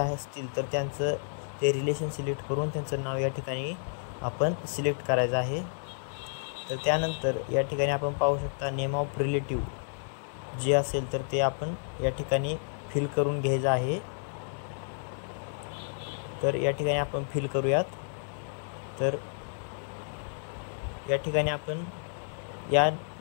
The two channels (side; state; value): right; silent; digital silence